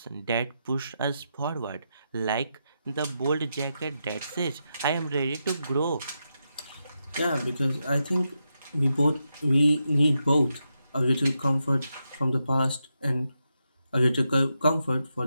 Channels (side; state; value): both; inverted; correlation -0.86